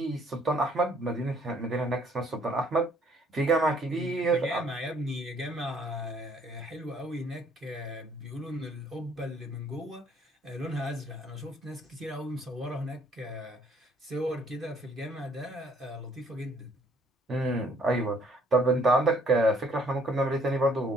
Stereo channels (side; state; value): both; normal; correlation 0.62